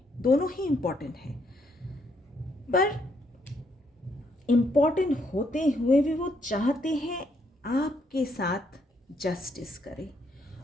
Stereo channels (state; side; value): normal; both; correlation 0.73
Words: दोनों ही इम्पॉर्टेंट है। पर इम्पॉर्टेंट होते हुए भी वो चाहते हैं आपके साथ जस्टिस करे,